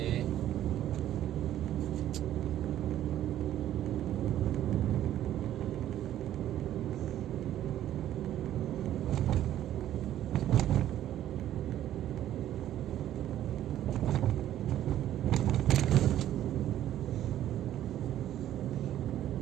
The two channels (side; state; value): left; quieter; 12.1 dB